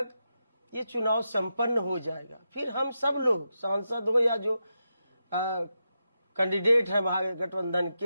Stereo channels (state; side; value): inverted; both; correlation -0.87